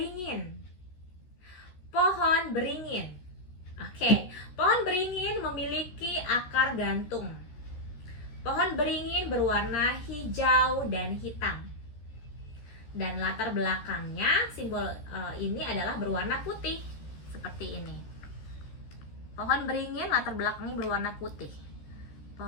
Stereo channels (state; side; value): late; right; 14 ms